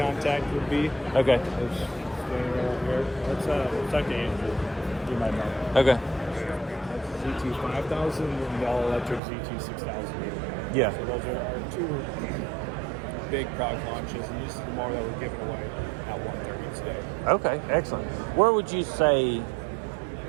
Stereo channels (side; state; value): left; drops out; at 9.2 s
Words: would be. Okay. It's standing over here. Let's talk to Andrew. You might know. Okay. ZT 5000 and the all electric ZT 6000. Yeah. So those are our two big product launches, and this is the mower that we're giving away at 1:30 today. Okay, excellent. Where would you say